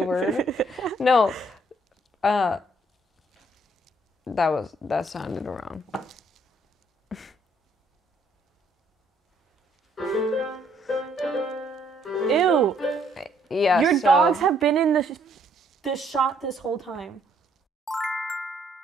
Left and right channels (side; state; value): both; normal; correlation 0.67